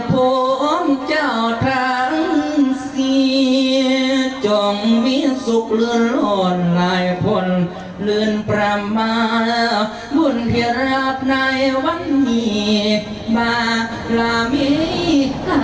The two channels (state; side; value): identical; both; correlation 1.00